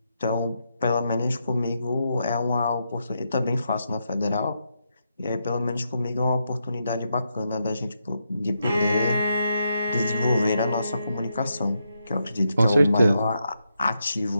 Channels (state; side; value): inverted; both; correlation -0.83